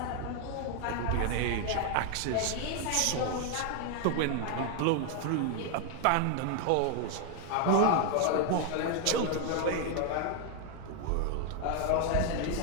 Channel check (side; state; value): both; different; correlation 0.00